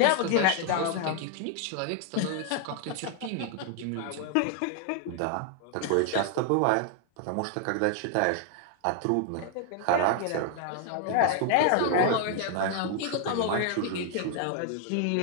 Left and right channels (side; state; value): both; different; correlation 0.00